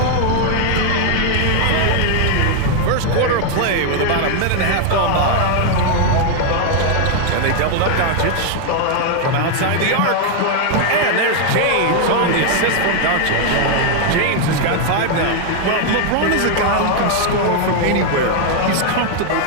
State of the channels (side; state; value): both; different; correlation 0.00